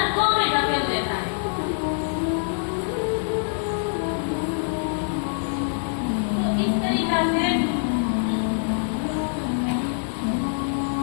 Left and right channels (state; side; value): silent; right; digital silence